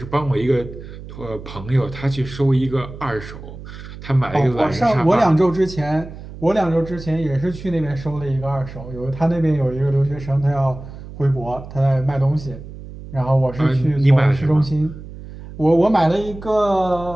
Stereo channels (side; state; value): right; noise; hum, 14 dB below the sound